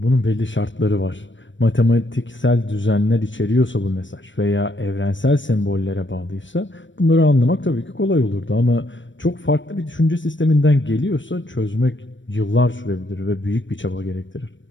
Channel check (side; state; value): right; late; 0.55 ms